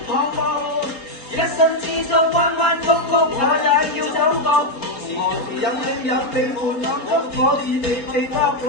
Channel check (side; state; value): right; late; 4.0 ms